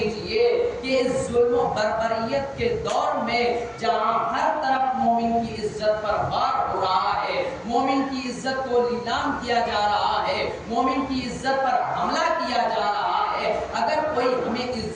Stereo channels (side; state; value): both; identical; correlation 1.00